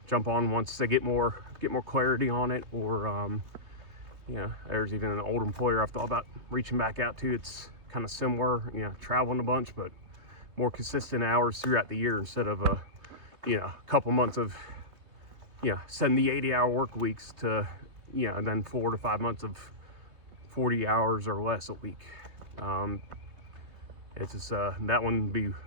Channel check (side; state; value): left; late; 3.2 ms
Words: jump on once they get more clarity on it. Or there's even an old employer I've thought about reaching back out to. It's kind of similar, traveling a bunch, but more consistent hours throughout the year instead of a couple months of 70, 80-hour work weeks to and then 4 to 5 months of 40 hours or less a week. It's just that one would be